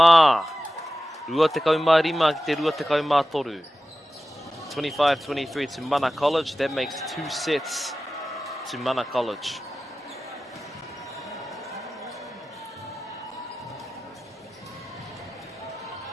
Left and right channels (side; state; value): both; normal; correlation 0.94